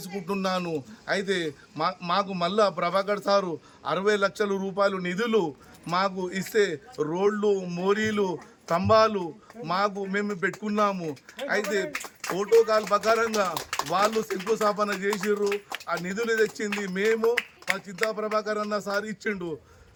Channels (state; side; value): identical; both; correlation 1.00